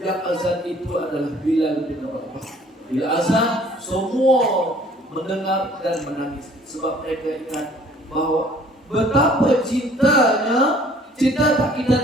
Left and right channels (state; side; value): normal; both; correlation 0.55